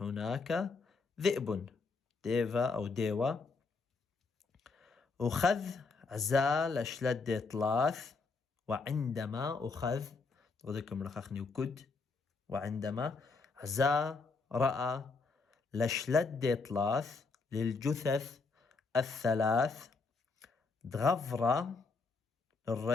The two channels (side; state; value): right; quieter; 4.3 dB